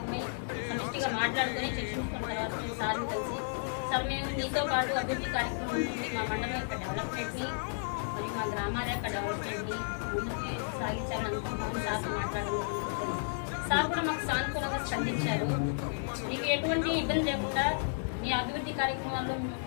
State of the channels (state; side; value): silent; right; digital silence